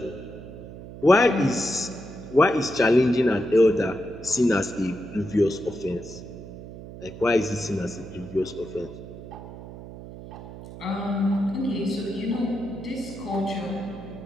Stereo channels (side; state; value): right; noise; hum, 13 dB below the sound